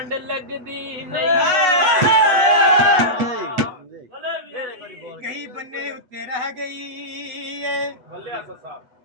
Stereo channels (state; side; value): late; left; 8.1 ms